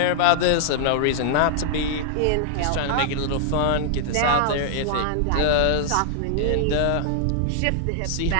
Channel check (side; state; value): both; different; correlation -0.01